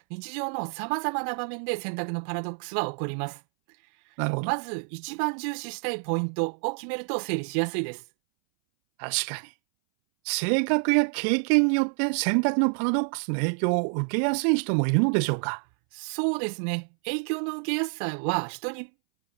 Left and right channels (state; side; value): silent; left; 60 dB below the other